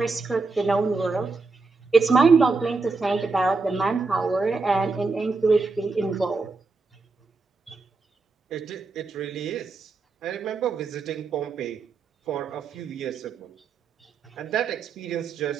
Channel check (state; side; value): quieter; left; 4.0 dB